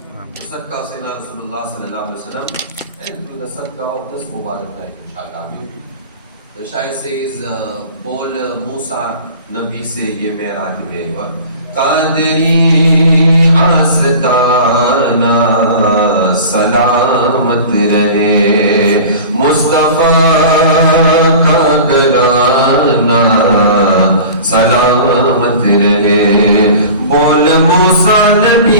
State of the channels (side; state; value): both; inverted; correlation -0.39